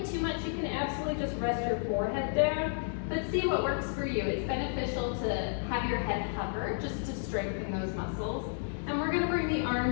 too much, you can absolutely just rest your forehead down, but see what works for you. It's beneficial to have your head hover just to strengthen those muscles. And we're gonna bring the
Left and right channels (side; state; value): right; silent; digital silence